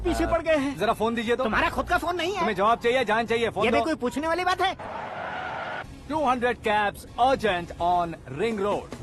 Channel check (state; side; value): identical; both; correlation 1.00